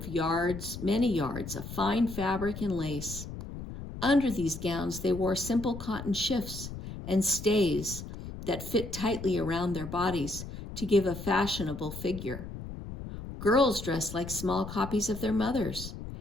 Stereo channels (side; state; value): left; noise; rumble, 10 dB below the sound